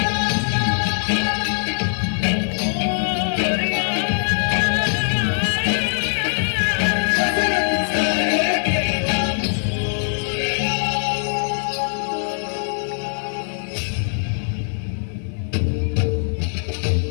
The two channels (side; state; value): right; silent; digital silence